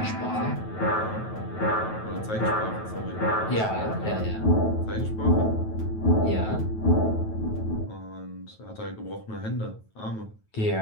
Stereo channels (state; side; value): late; right; 9.2 ms